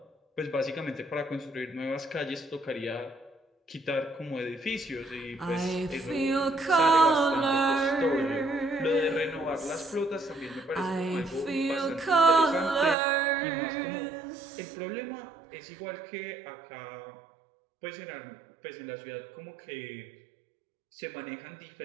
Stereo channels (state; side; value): drops out; left; at 13.0 s